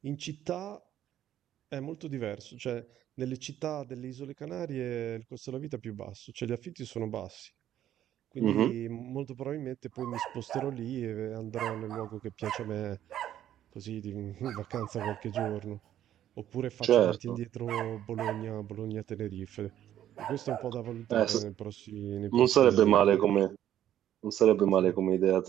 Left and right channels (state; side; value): quieter; left; 11.5 dB